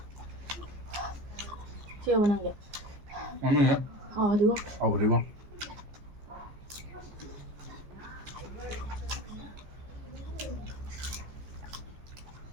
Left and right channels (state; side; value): late; left; 15 ms